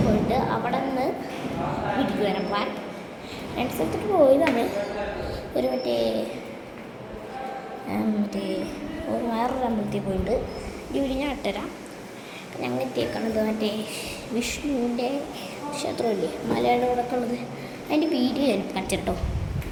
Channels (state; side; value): identical; both; correlation 1.00